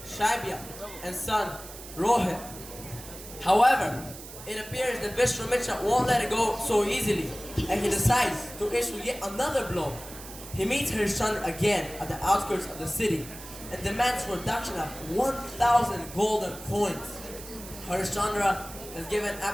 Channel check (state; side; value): noise; right; hiss, 14 dB below the sound